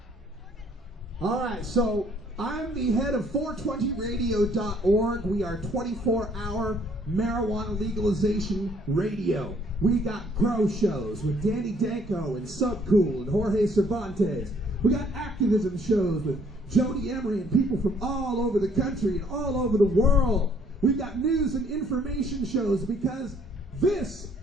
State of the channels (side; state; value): both; normal; correlation 0.63